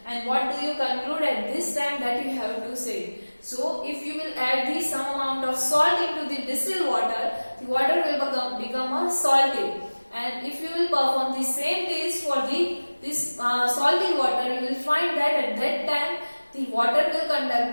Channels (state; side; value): inverted; both; correlation -1.00